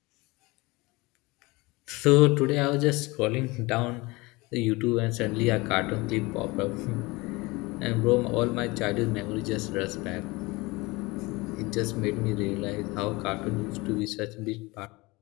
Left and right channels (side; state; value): right; quieter; 23.4 dB